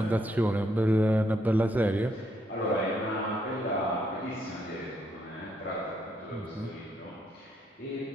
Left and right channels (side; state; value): both; normal; correlation 0.75